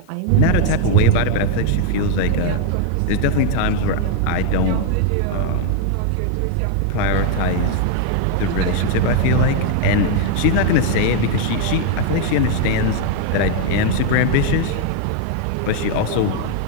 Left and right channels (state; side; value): different; both; correlation 0.01